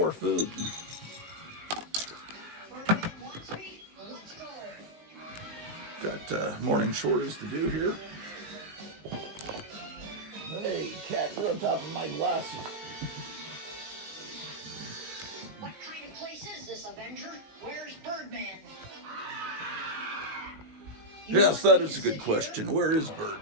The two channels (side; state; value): left; late; 19 ms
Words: food. Got morning chores to do here. Hey, cat, you're on top of my glasses. What kind of place is this, Avenger? Where's Birdman? Yes, that is a good question. Where is